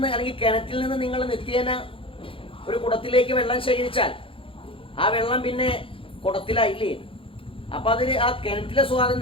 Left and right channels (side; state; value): right; late; 0.26 ms